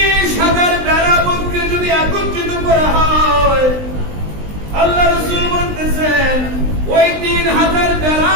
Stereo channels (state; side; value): late; left; 20 ms